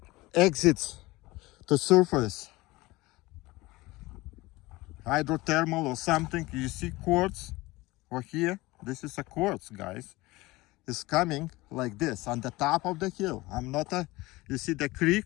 exits to surface. Hydrothermal or something. You see quartz over here? This is a quartz, guys. It's coming like this on the top of the hill. You see the creek,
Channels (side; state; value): right; quieter; 20.6 dB